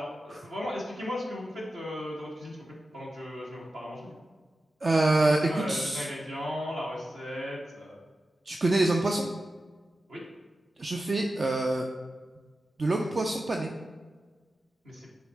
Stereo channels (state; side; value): normal; both; correlation 0.93